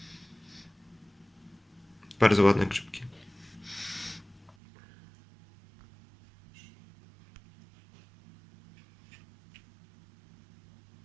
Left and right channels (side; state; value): left; drops out; at 4.5 s